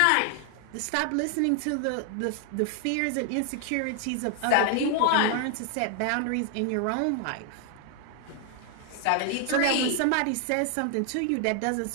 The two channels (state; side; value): different; both; correlation 0.00